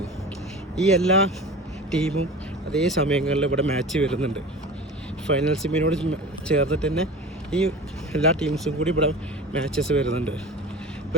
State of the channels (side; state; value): both; normal; correlation 0.35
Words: ഈ എല്ലാ ടീമും അതേ സമയങ്ങളിൽ ഇവിടെ മാച്ച് വരുന്നുണ്ട്. ഫൈനൽ സെമിനോട് ചേർന്നിട്ട് തന്നെ ഈ എല്ലാ ടീംസും കൂടി ഇവിടെ മാച്ചസ് വരുന്നുണ്ട്.